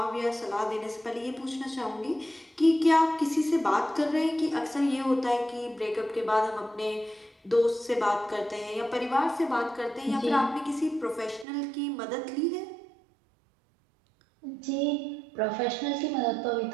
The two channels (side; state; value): left; drops out; at 11.5 s